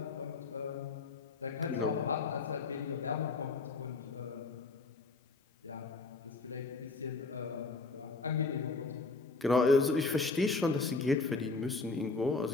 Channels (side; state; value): right; quieter; 3.9 dB